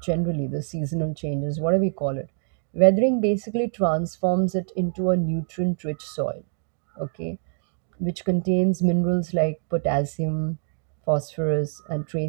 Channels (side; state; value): left; silent; digital silence